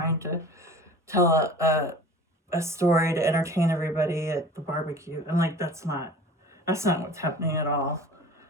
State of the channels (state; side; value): normal; both; correlation 0.42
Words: to tell a story to entertain everybody at the barbecue. And like, that's not what's happening at all.